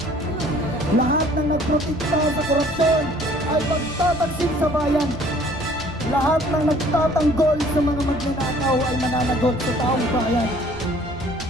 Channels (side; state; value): both; normal; correlation 0.55